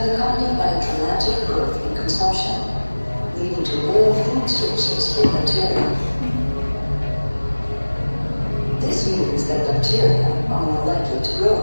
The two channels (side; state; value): both; inverted; correlation -1.00